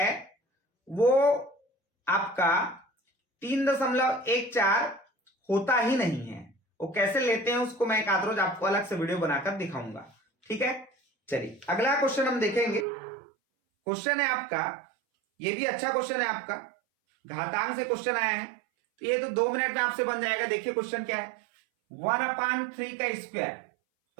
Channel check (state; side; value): drops out; left; at 12.9 s